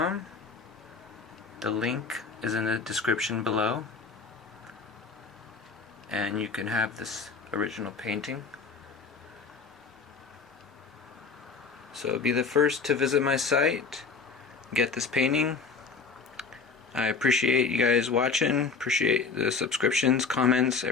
The link is in the description below, and you can have this original painting. So be the first to visit my site, get this painting. I appreciate you guys watching, appreciate the subscriptions, comments,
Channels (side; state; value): right; quieter; 4.9 dB